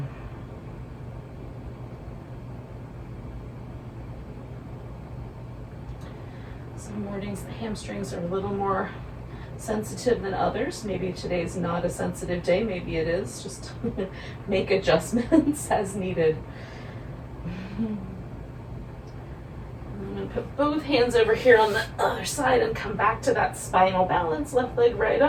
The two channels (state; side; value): identical; both; correlation 1.00